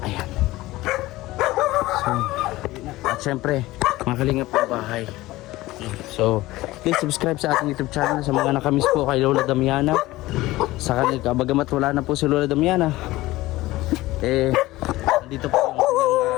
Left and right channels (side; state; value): right; quieter; 18.2 dB